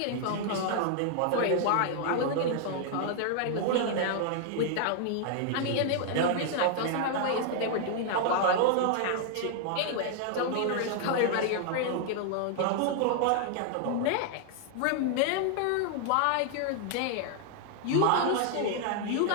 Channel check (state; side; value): different; both; correlation 0.00